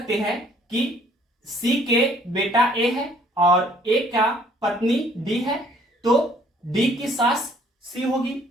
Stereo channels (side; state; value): both; normal; correlation 0.60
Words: हैं कि सी के बेटा ए है और ए का पत्नी डी है, तो डी की सास सी होगी।